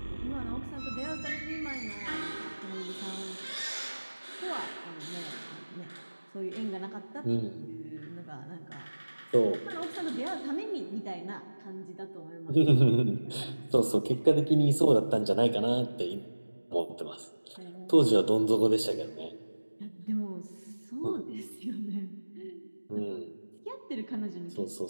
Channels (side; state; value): both; inverted; correlation -1.00